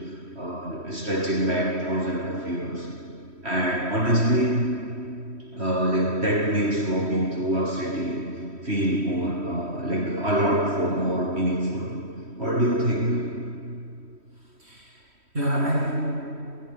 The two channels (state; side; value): late; left; 3.1 ms